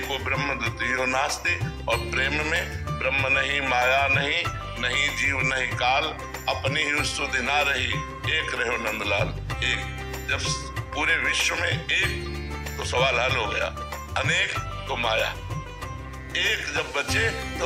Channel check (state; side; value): identical; both; correlation 1.00